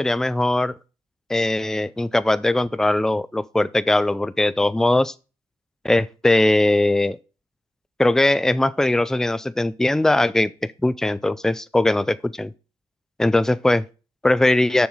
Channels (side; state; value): both; normal; correlation 0.98